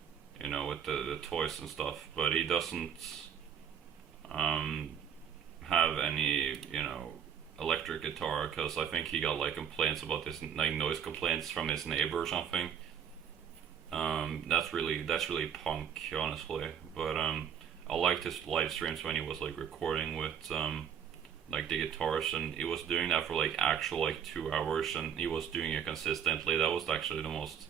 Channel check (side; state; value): left; quieter; 8.3 dB